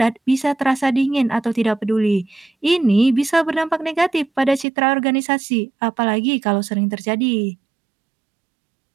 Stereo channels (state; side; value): drops out; left; at 4.7 s